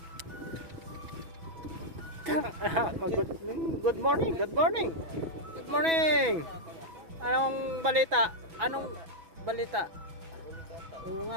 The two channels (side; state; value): left; late; 6.1 ms